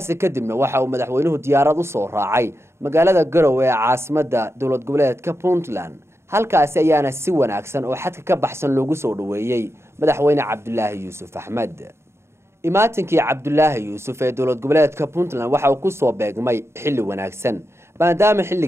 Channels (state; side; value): late; left; 0.13 ms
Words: kadibna waxa uu madaxweynuhu diyaarad u soo raacay magaalada Garowe ee caasimadda dowlad goboleedka Puntland. halkaas ayaana si wanaagsan oo xadka ka baxsan loogu soo dhaweeyay madaxweyne Cabdullaahi Yuusuf Axmed. imaatinkii Cabdullaahi Yuusuf ee dowlad goboleedka Puntland waxa uu ku soo beegmay xilli wanaagsan maadaama